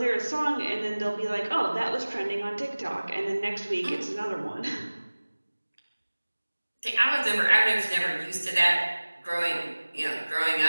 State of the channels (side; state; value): both; inverted; correlation -1.00